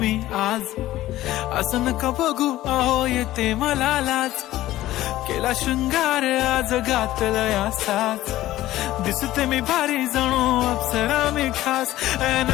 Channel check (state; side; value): quieter; right; 15.3 dB